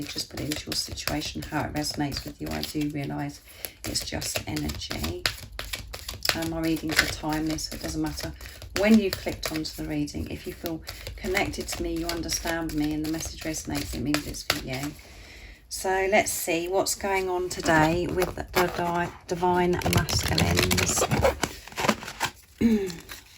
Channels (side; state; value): both; identical; correlation 1.00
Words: Just put it into your situation, how it resonates with you. I do realise it's just energy. My readings are timeless, so it doesn't matter when you've clicked onto the reading. If you feel connected to me, you understand me, and the message resonates, it means it's for you. So let's see what's going on today with the Divine Masculines.